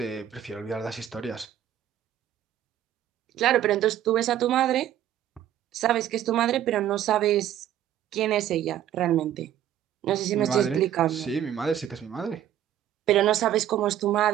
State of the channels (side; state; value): left; quieter; 11.2 dB